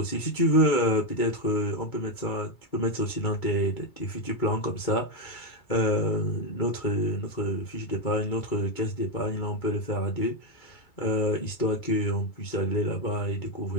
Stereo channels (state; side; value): late; right; 2.3 ms